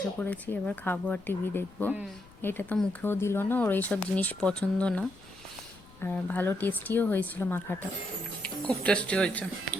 পড়েছি, এবার খাবো আর টিভি দেখবো। এটা তো মুখেও দিল না, ওর এইসব জিনিস পছন্দ না। আর ভালো টেস্টিও হয়েছিল মাখাটা। খুব টেস্টি হয়েছে।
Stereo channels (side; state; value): left; noise; rumble, 23 dB below the sound